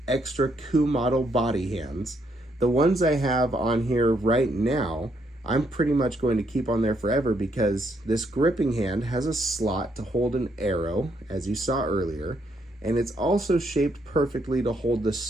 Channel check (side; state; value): both; normal; correlation 0.74